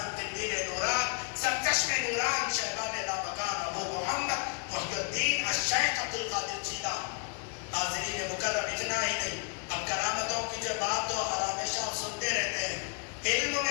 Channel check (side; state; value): right; quieter; 39.8 dB